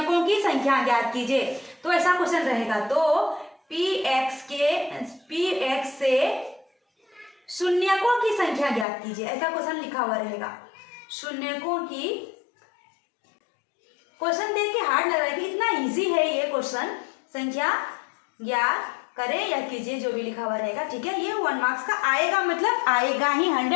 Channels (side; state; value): right; drops out; at 8.8 s